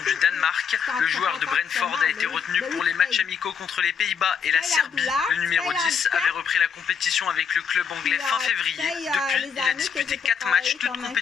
du Danemark. Le joueur de Brentford a été retenu pour les matchs amicaux contre les Pays-Bas et la Serbie. Le numéro 10 avait repris la compétition avec le club anglais fin février. Depuis, il a disputé 4 matchs, toutes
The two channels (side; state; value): right; quieter; 6.8 dB